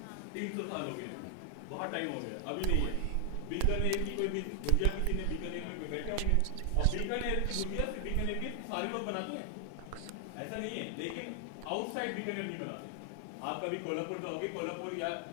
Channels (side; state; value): both; different; correlation 0.00